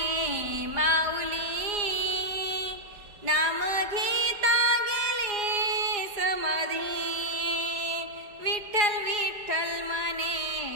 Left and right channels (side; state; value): left; late; 4.8 ms